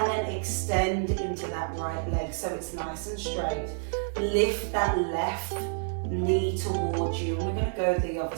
then extend into that right leg so it's nice and straight. Lift that left knee towards you, and we're going to go the other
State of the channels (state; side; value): silent; left; digital silence